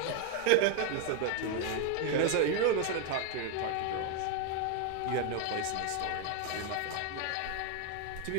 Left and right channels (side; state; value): both; different; correlation 0.01